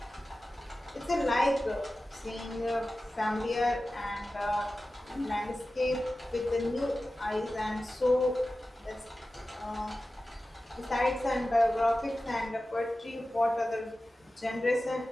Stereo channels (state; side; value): normal; both; correlation 0.95